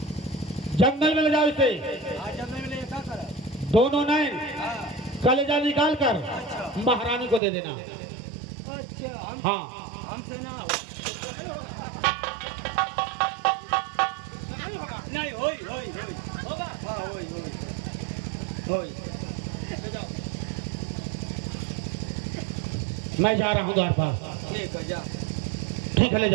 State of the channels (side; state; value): left; drops out; at 7.4 s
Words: जंगल में ले जाओ इसे। आज जब मैं क्या करा? दोनों नैन हाँ कलेजा निकाल कर अच्छा महारानी को दे देना। अच्छा हम हाँ हमसे ना हो। नहीं होई होई होई होगा। हाँ होई होई होई। ले जाओ। मैं जा रहा हूँ द्वारपाल। ठीक है जा। ठीक है, ले